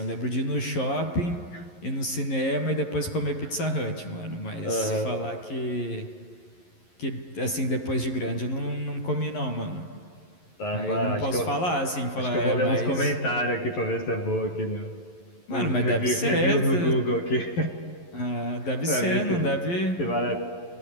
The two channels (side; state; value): right; late; 11 ms